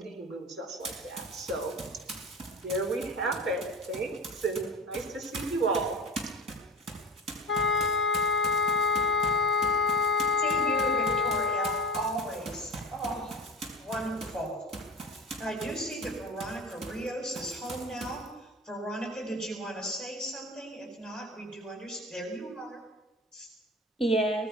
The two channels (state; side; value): normal; both; correlation 0.32